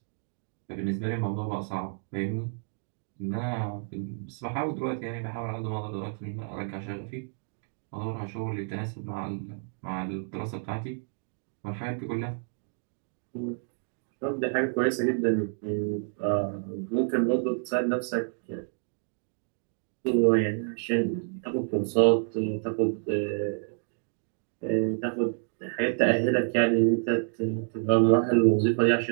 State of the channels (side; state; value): left; silent; 58 dB below the other